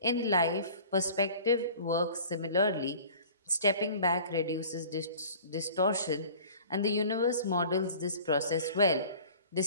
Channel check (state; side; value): inverted; both; correlation -0.45